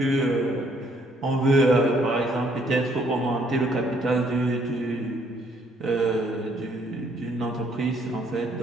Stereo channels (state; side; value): normal; both; correlation 0.67